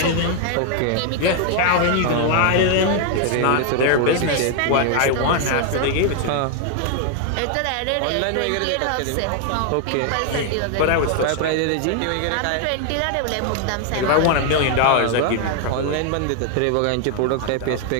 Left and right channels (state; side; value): different; both; correlation 0.00